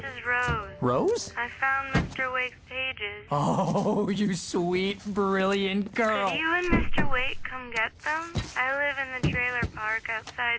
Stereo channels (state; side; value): identical; both; correlation 1.00